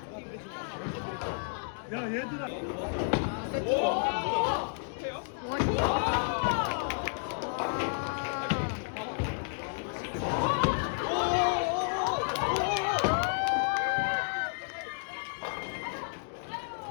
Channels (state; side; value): silent; right; digital silence